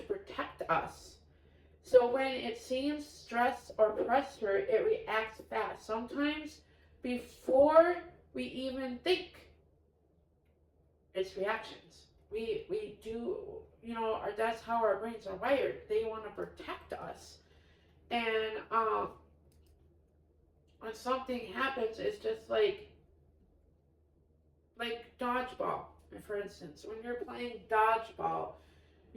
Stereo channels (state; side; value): identical; both; correlation 1.00